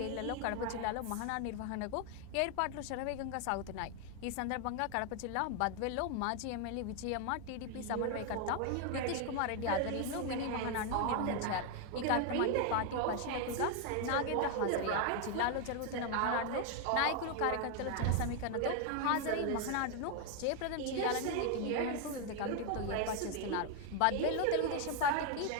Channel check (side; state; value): both; different; correlation 0.01